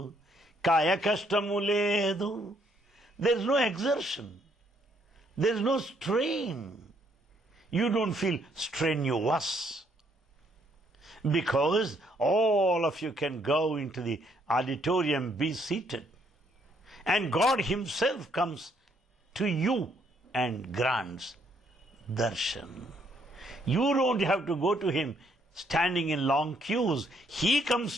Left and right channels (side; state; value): both; normal; correlation 0.70